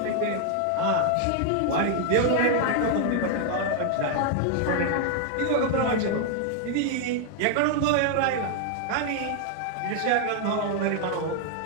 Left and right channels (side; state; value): both; different; correlation 0.00